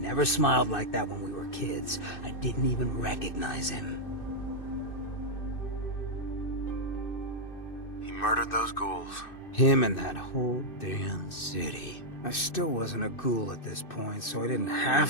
never smiled like that when we were kids. I didn't even recognize him. He murdered those ghouls. Him and that whole damn city. I still wasn't a ghoul at this point, so I didn't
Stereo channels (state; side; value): late; right; 2.6 ms